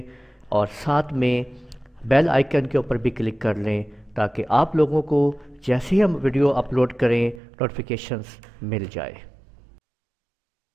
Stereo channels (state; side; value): drops out; left; at 7.4 s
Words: اور ساتھ میں بیل آئیکن کے اوپر بھی کلک کر لیں تاکہ آپ لوگوں کو جیسے ہی ہم ویڈیو اپلوڈ کریں نوٹیفیکیشنز مل جائے۔